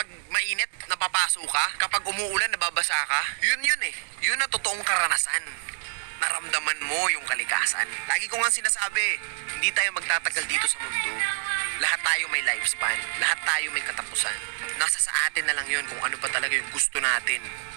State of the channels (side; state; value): left; silent; digital silence